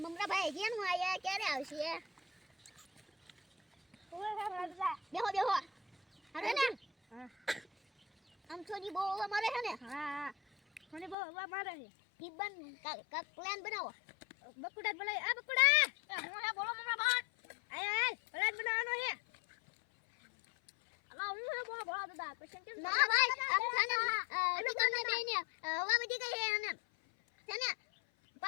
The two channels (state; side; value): drops out; right; at 11.2 s